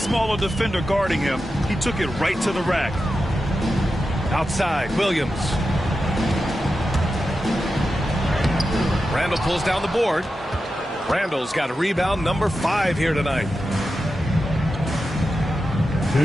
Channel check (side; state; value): both; normal; correlation 0.90